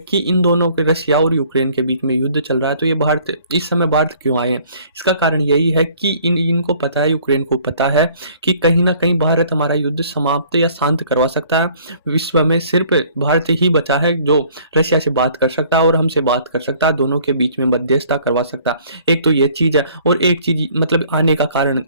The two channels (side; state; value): both; inverted; correlation -0.56